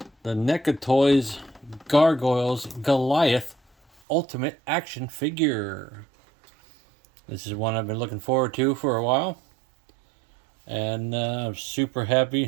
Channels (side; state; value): left; drops out; at 4.0 s